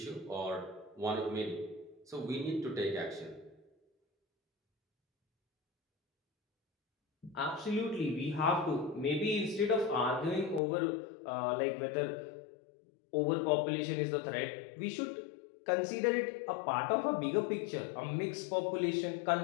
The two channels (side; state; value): right; drops out; at 10.6 s